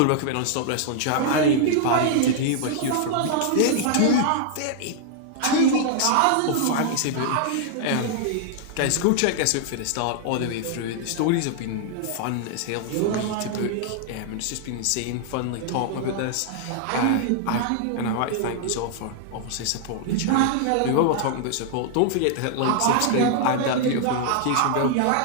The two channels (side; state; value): both; different; correlation 0.00